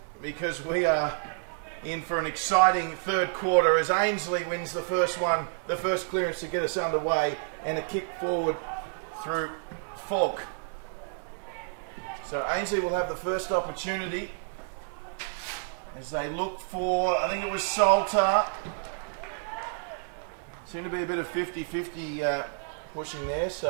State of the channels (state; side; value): silent; left; digital silence